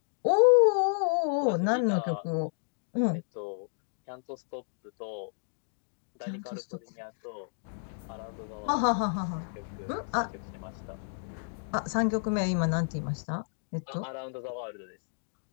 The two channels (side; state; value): right; silent; digital silence